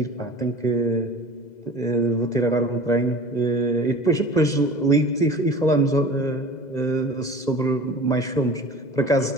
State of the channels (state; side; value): late; right; 2.0 ms